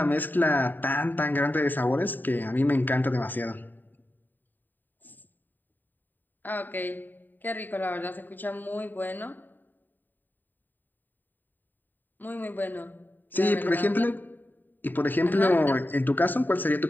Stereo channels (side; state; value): right; late; 0.090 ms